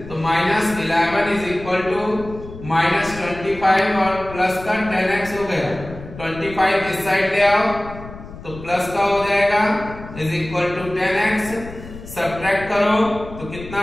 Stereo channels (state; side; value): noise; left; rumble, 14 dB below the sound